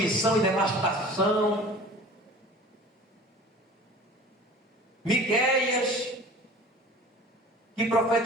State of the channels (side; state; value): both; normal; correlation 0.43